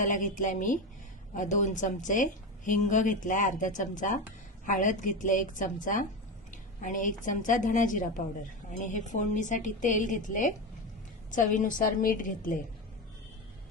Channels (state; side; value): normal; both; correlation 0.19